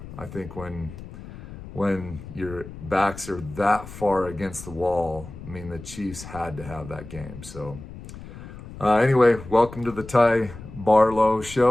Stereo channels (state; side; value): noise; left; rumble, 14 dB below the sound